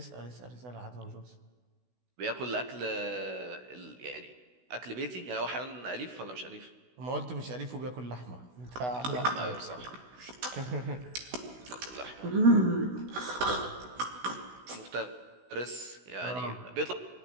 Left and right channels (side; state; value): left; late; 16 ms